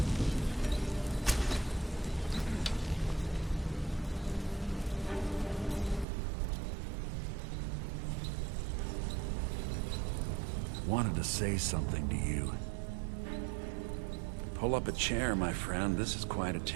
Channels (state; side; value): drops out; left; at 6.1 s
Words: Wanted to say something to you. Pull up a chair, my friend. This is quite a